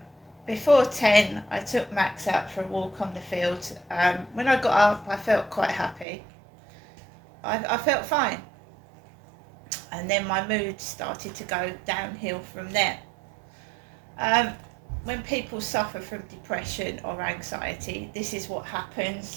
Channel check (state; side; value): drops out; left; at 6.1 s